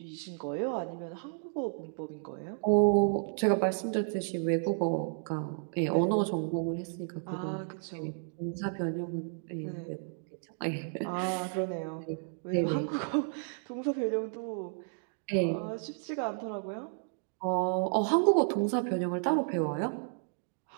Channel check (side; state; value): left; silent; digital silence